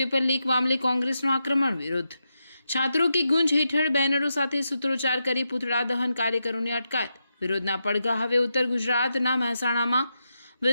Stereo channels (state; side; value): inverted; both; correlation -0.86